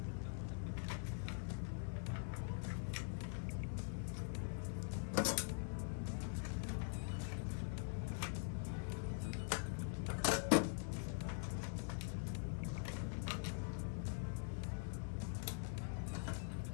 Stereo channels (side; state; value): right; silent; digital silence